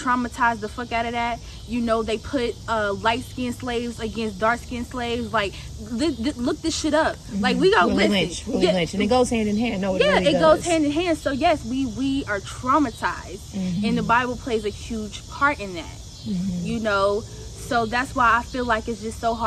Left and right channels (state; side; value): identical; both; correlation 1.00